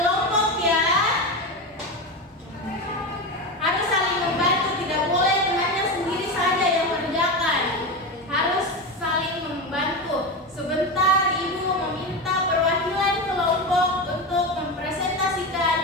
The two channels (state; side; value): normal; both; correlation 0.19